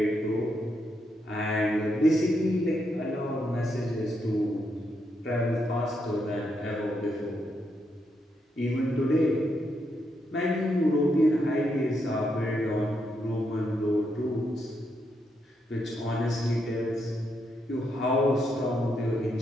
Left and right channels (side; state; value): both; normal; correlation 0.80